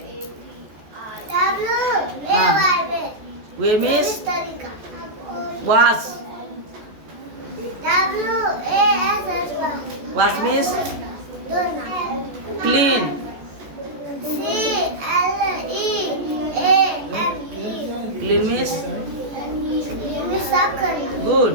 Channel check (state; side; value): late; left; 14 ms